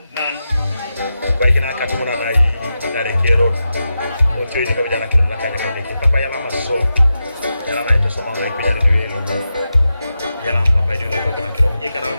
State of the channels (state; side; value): inverted; both; correlation -0.89